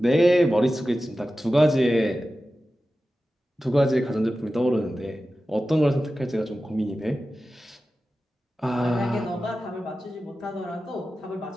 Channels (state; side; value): normal; both; correlation 0.94